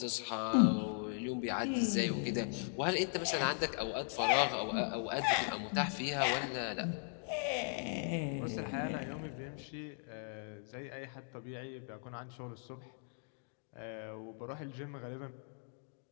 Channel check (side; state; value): right; silent; 52 dB below the other